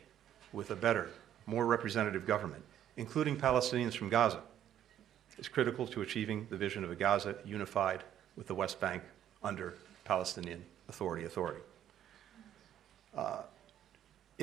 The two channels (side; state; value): left; quieter; 10.5 dB